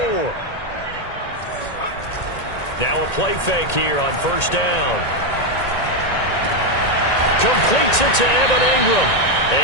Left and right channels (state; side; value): late; right; 1.9 ms